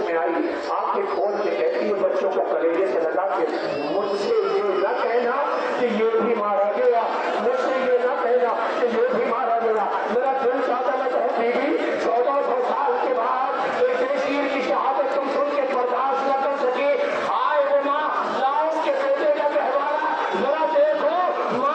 میں آئی، آنکھیں کھول کے کہتی ہے بچوں کو کلیجے سے لگا کے مجھ سے یہ نہ کہنا کہ یہ بھی مارا گیا، مجھ سے یہ نہ کہنا کہ یہ بھی مارا گیا. میرا دل چاہتا میں کہوں بیوی 1400 سال کے بعد ایک بے شیر کی شہادت تم سن کے برداشت نہ کر سکے. آئے وہ ماں لاؤ اس کے بیٹے کا گہوارہ، ذرا دیکھو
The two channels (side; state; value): both; identical; correlation 1.00